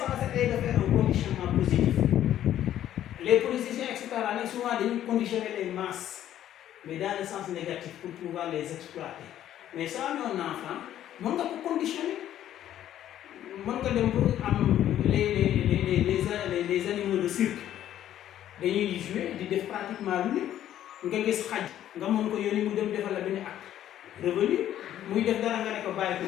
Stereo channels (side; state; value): right; quieter; 11.7 dB